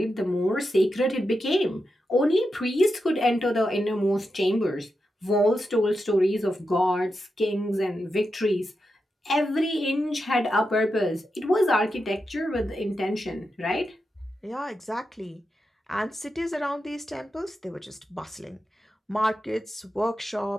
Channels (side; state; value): both; normal; correlation 0.88